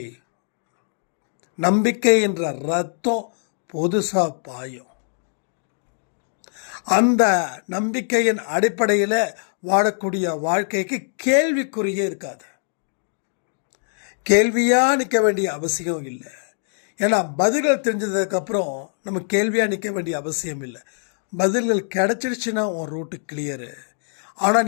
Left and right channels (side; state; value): right; silent; digital silence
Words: நம்பிக்கை என்ற ரத்தம் புதுசாக பாயும். அந்த நம்பிக்கையின் அடிப்படையில் வாழக்கூடிய வாழ்க்கைக்கு கேள்விக்குறியே இருக்காது. கேள்வியாக நிற்க வேண்டிய அவசியம் இல்லை. ஏன்னா பதில்கள் தெரிஞ்சதுக்கப்புறம் நம்ம கேள்வியாக நிற்க வேண்டிய அவசியம் இல்லை. பதில்கள் கிடச்சிடுச்சுன்னா உன் ரூட்டு கிளியரு. ஆனால்